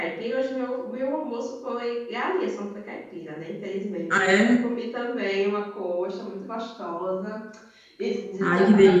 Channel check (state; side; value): identical; both; correlation 1.00